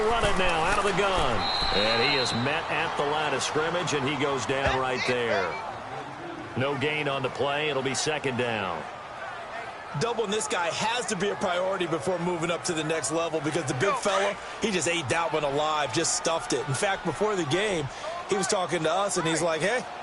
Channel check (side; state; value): both; identical; correlation 1.00